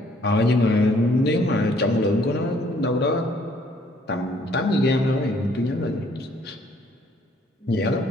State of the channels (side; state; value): both; normal; correlation 0.63